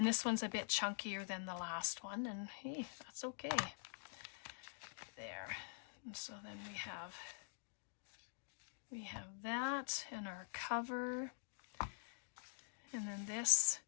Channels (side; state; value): right; silent; digital silence